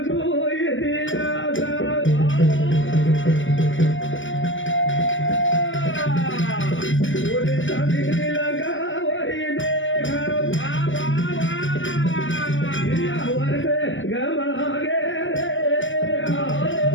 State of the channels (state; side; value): late; right; 0.56 ms